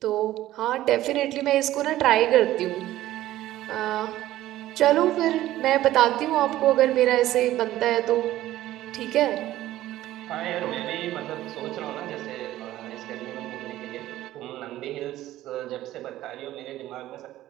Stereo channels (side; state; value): left; quieter; 14.7 dB